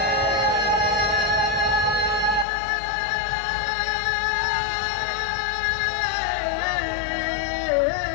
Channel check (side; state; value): right; drops out; at 2.5 s